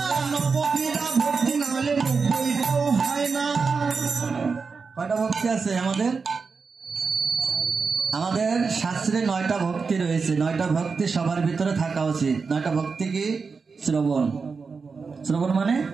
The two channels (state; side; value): quieter; left; 4.9 dB